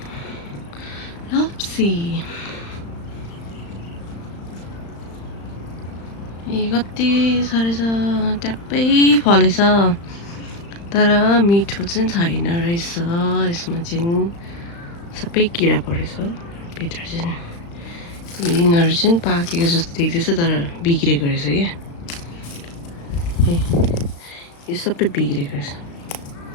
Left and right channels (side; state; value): right; late; 35 ms